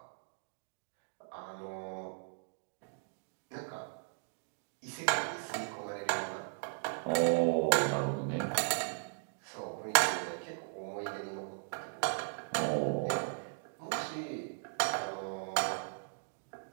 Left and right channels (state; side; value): silent; left; digital silence